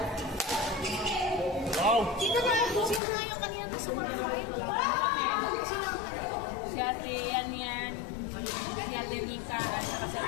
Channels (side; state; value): right; drops out; at 3.0 s